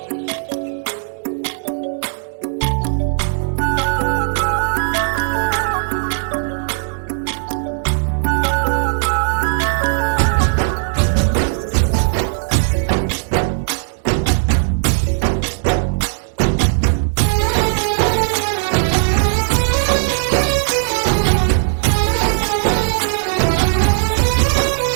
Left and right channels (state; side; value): silent; left; 68 dB below the other